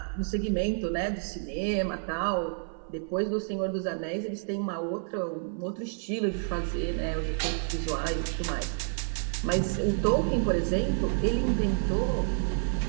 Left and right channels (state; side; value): silent; left; 56 dB below the other